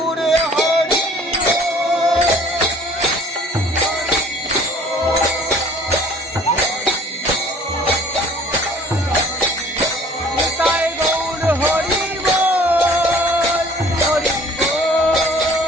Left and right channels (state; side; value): normal; both; correlation 0.52